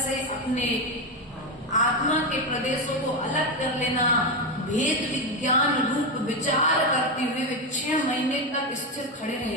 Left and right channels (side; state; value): both; normal; correlation 0.11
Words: अपने आत्मा के प्रदेशों को अलग कर लेना, भेद विज्ञान रूप विचार करते हुए वे 6 महीने तक स्थिर खड़े